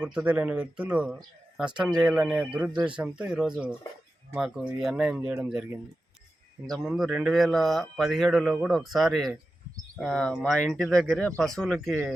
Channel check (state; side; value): normal; both; correlation 0.92